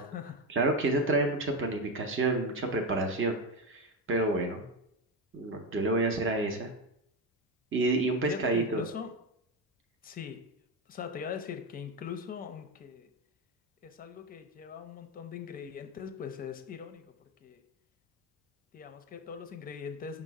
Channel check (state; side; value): normal; both; correlation 0.14